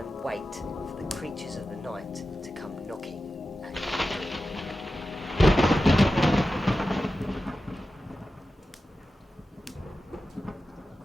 wait for the creatures of the night to come knocking at your door.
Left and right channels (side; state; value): both; normal; correlation 0.93